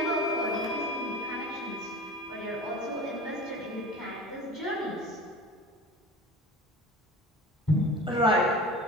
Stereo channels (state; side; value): normal; both; correlation 0.36